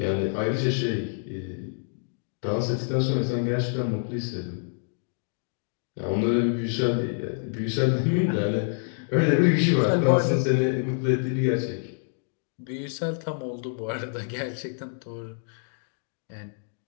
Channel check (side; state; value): right; silent; digital silence